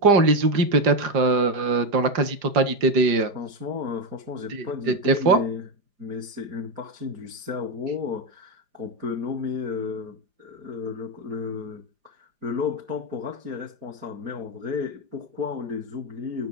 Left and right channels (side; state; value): left; late; 4.9 ms